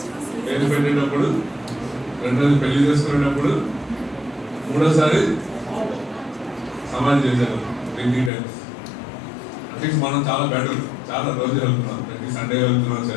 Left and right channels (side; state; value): right; drops out; at 8.3 s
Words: పెట్టేటప్పుడు, రెండోది పెళ్లి చేసుకునేటప్పుడు, మూడోసారి సమాధి చేశారు 3 టైమ్స్. అట్లీస్ట్ మనం చాలా బెటర్, చాలా రోజు వెళ్తున్నాం. ప్రతి సండే వెళ్తున్నాం